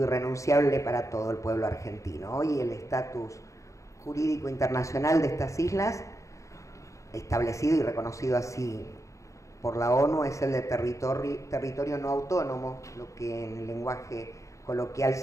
irrenunciable para todo el pueblo argentino. Hoy el estatus jurídico internacional de estas islas, establecido y reconocido así por la ONU, es el de territorio no autónomo, lo que en el lenguaje coloquial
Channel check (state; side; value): late; right; 0.15 ms